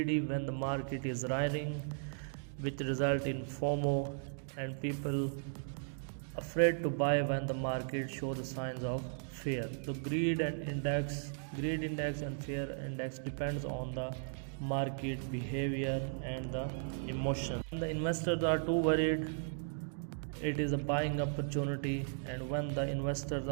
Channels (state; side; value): silent; left; digital silence